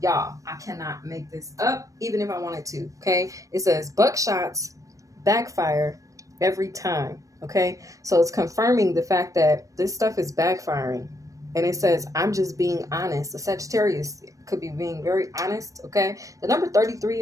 y'all. I cannot make this up even if I wanted to. Okay, it says buckshots backfire every time. Okay, so it's confirming the fact that this stuff is backfiring. And it says, I'm just being honest. The Sagittarius could be being very honest, okay? The number 33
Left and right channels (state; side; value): late; left; 0.16 ms